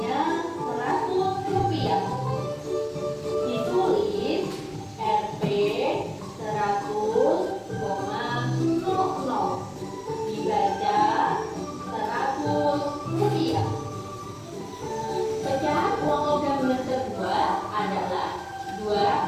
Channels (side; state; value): both; identical; correlation 1.00